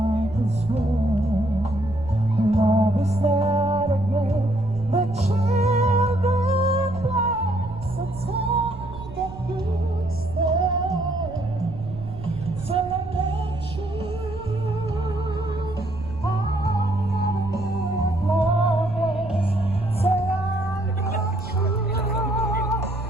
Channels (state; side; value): noise; right; rumble, 13 dB below the sound